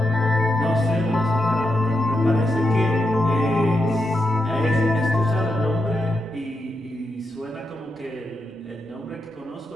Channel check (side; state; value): both; normal; correlation 0.85